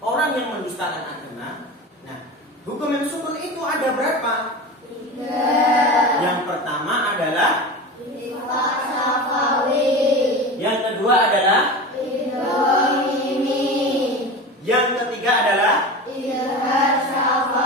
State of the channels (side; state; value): both; normal; correlation 0.29